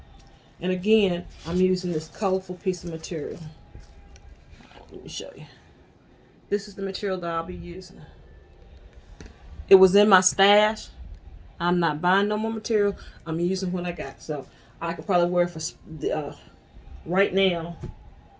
And again, I'm using this colorful piece of material. Let me show you. This is the material that I'll be using. It was in my stash. I'm not buying no more material. I'm using what I got. So I could probably wear it for right now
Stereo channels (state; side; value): identical; both; correlation 1.00